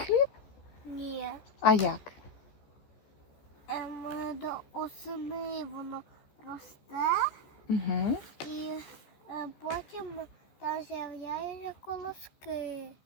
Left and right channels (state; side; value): late; right; 14 ms